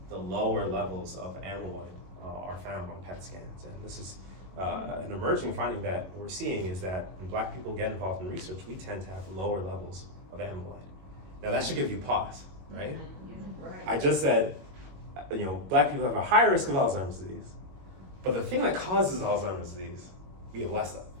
the lower levels of amyloid are found on PET scans. And this is an emerging finding that we're seeing, is that when Black people get involved in research, we tend to have lower levels of amyloid. Now that should give you pause, right? I just said, Black people have a higher risk of Alzheimer's disease, but the thing that causes Alzheimer's disease, we have less of.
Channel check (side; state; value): left; late; 22 ms